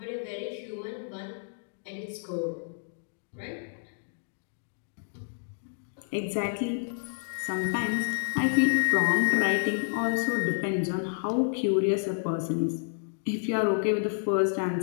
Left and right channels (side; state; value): right; silent; digital silence